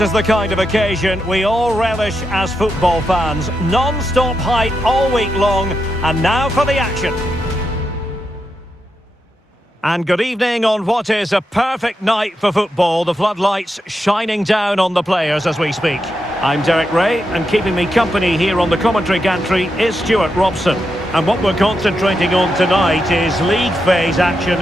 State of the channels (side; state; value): both; normal; correlation 0.85